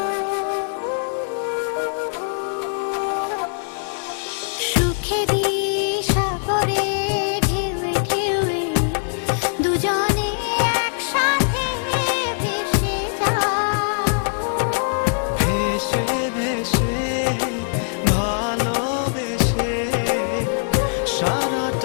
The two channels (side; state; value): right; silent; digital silence